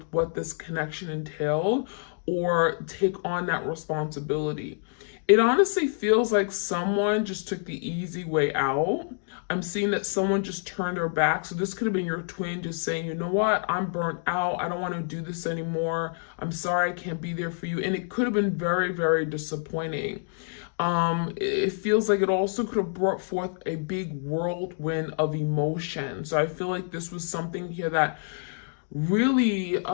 what this connection entailed, or take on that responsibility. It honestly feels like someone just took the easy way out. I'm seeing that someone just turned their back. So this could have been your twin just saying, you know what, I'm burnt out. I don't want to do this anymore. I'm sorry I can't be there for you. And it could have been very, very disappointing. It feels like it also could have brought forth a big whirlwind of emotion. So I feel like this was something here that really,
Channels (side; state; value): right; silent; digital silence